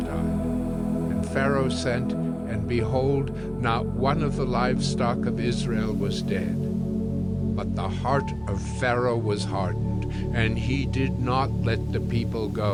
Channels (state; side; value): noise; left; rumble, 24 dB below the sound